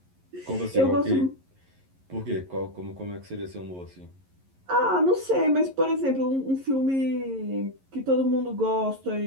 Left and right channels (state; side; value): late; left; 11 ms